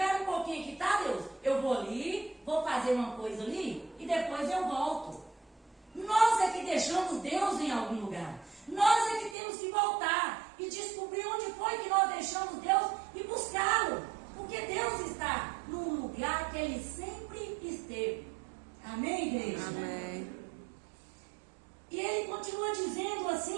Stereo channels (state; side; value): drops out; left; at 9.3 s